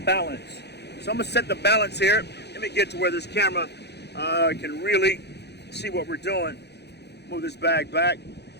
balance. So I'm gonna set the balance here. Let me get to where this camera can really see what we're doing. Move this bag back.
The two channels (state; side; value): late; right; 0.49 ms